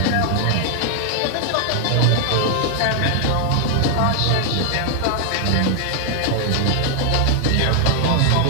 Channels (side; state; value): both; different; correlation 0.00